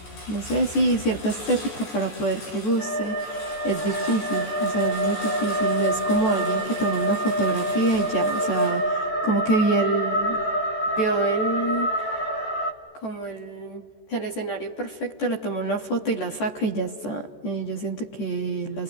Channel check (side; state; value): right; late; 14 ms